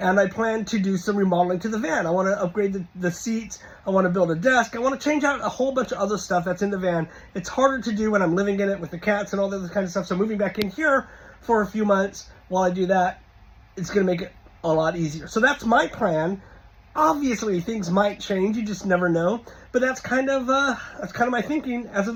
I plan to do some remodeling to the van. I want to upgrade the seats. I want to build a desk. I want to change out a whole bunch of other stuff that's in the van. It's harder to do when I'm living in it with the cats and all that kind of stuff. So moving back in here for a few months while I do that, it's going to make it a lot easier. So that's my plan. Obviously, things might change. You just never know. But that's kind of my thinking as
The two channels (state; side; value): identical; both; correlation 1.00